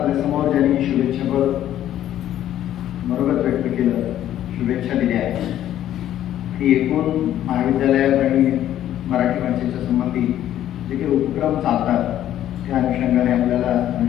ज्यांनी शुभेच्छापर मनोगत व्यक्त केलं, शुभेच्छा दिल्या आहेत, ती एकूण महाविद्यालयात आणि मराठी भाषेच्या संबंधी जे काही उपक्रम चालतात त्या अनुषंगाने आपल्याला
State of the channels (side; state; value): right; quieter; 11.9 dB